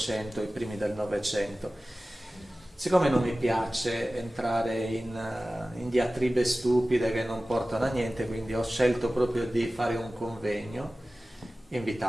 e i primi del Novecento. Siccome non mi piace entrare in diatribe stupide che non portano a niente, quindi ho scelto proprio di fare un convegno,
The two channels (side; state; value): both; normal; correlation 0.96